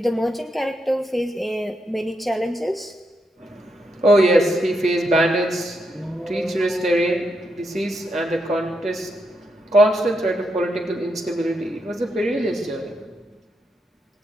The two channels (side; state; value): both; normal; correlation 0.81